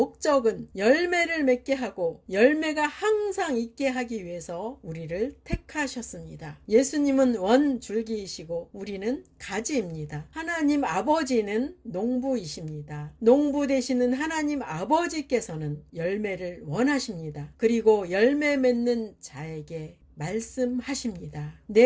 열매를 맺게 하고 열매가 항상 있게 하기 위해서 우리를 택하셨습니다. 예수님은 원줄기이시고 우리는 가지입니다. 하나님 아버지는 농부이십니다. 농부 되시는 하나님 아버지께서는 열매를 원하십니다. 그리고 열매 맺는 자에게 말씀하십니다.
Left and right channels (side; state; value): both; identical; correlation 1.00